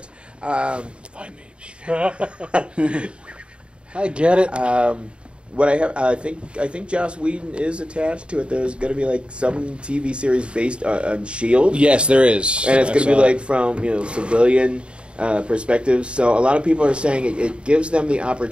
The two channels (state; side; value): late; left; 0.055 ms